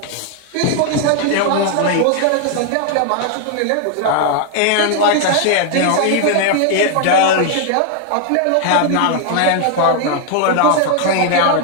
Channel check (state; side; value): different; both; correlation 0.00